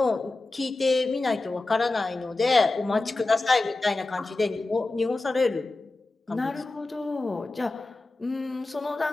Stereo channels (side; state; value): right; quieter; 3.2 dB